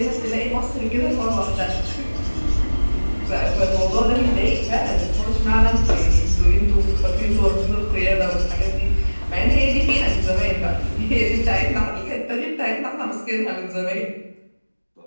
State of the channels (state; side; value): inverted; both; correlation -1.00